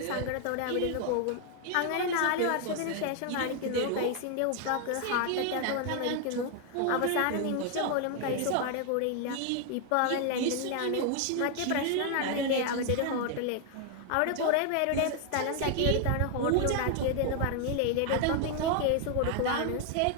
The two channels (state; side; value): different; both; correlation 0.00